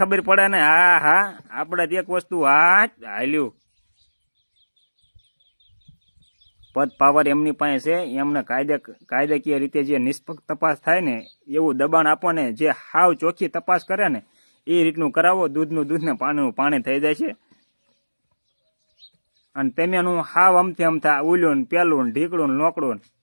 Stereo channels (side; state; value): both; inverted; correlation -1.00